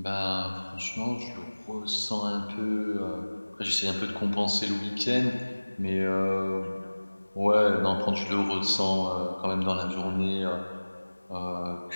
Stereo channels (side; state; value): both; inverted; correlation -1.00